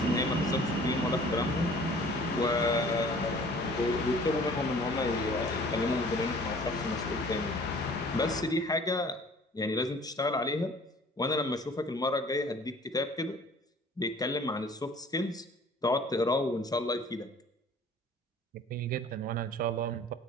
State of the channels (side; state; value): both; normal; correlation 0.50